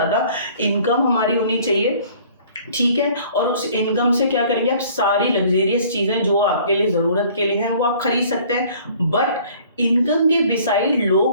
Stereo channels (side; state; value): both; inverted; correlation -0.53